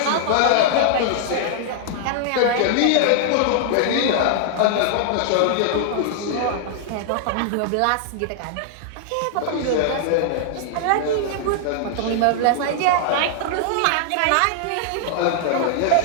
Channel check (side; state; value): both; different; correlation -0.01